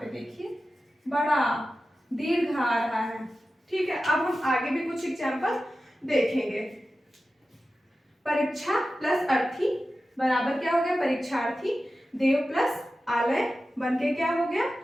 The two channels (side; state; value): both; normal; correlation 0.93